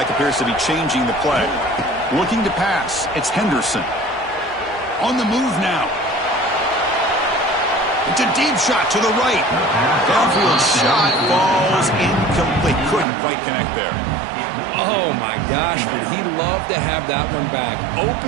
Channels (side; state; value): left; drops out; at 13.1 s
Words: appears to be changing the play. Looking to pass. It's Henderson. On the move now. It's a deep shot to the right. Downfield shot falls incomplete. Couldn't quite connect there. Oh, my gosh, would he love to have that one back.